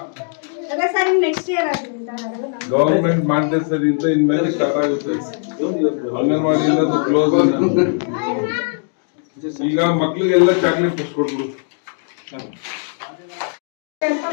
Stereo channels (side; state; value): right; silent; 57 dB below the other